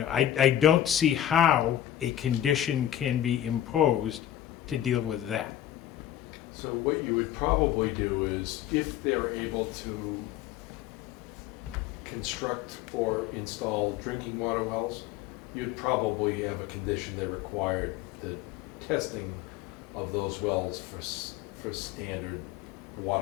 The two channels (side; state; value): right; quieter; 11.8 dB